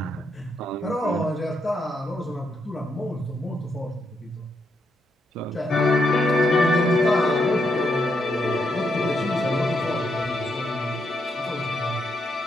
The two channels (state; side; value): normal; both; correlation 0.79